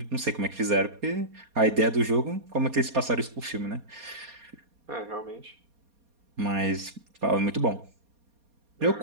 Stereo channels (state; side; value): late; left; 4.2 ms